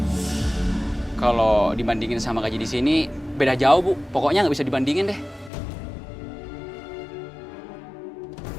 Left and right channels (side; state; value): right; drops out; at 5.5 s